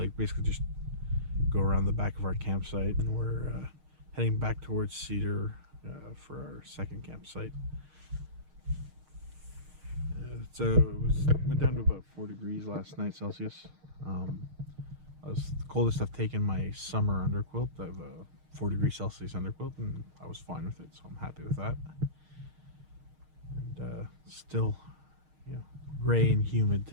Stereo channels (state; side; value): late; left; 6.5 ms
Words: basically just go around the back of our campsite, and we're heading back towards Cedar for our second campsite. Went down to about 4 degrees last night Celsius. That was the coldest I've taken my summer underquilt. I have a 4 degrees Celsius underquilt, and I was fine with it, so I'm happy with that. And still, you know, gray and humid